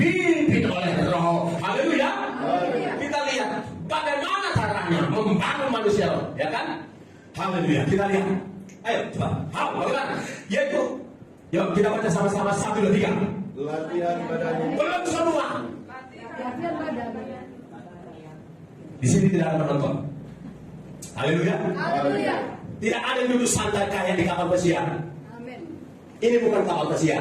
oleh roh. Haleluya. Kita lihat bagaimana caranya membangun manusia roh, ya kan? Haleluya. Kita lihat. Ayo coba. Bagaimana? Yaitu, yuk kita baca sama-sama 1, 2, 3. Latihan badan. Belum semua. Latihan badan. Di sini tidak ada penonton. Haleluya. Haleluya. Tidak ada yang duduk santai kayak di kapal pesiar. Amin. Ini bukan kapal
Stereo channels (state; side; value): identical; both; correlation 1.00